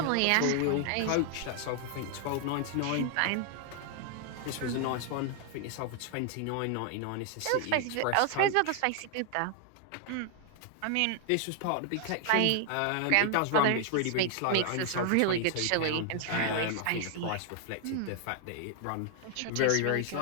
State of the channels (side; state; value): both; different; correlation 0.00